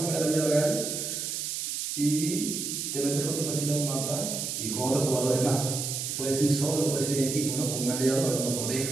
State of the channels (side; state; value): right; noise; hiss, 3 dB below the sound